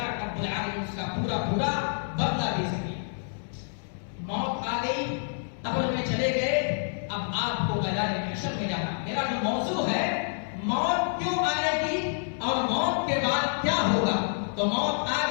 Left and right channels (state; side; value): silent; right; digital silence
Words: رب العالمین اس کا پورا پورا بدلہ دے سکے. موت آ گئی، قبر میں چلے گئے، اب آپ کو میدان محشر میں جانا. میرا جو موضوع ہے موت کیوں آئے گی اور موت کے بعد کیا ہوگا. تو موت آ